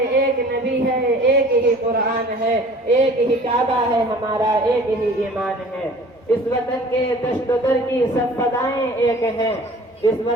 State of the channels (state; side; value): normal; both; correlation 0.47